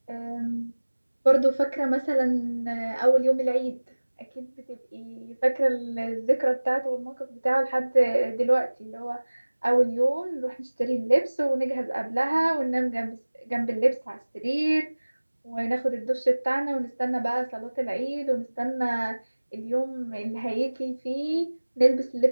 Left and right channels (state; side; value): inverted; both; correlation -1.00